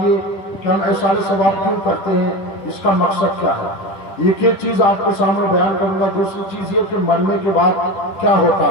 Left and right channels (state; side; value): late; right; 10 ms